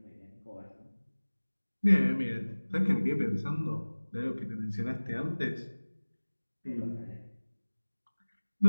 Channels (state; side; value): inverted; both; correlation -1.00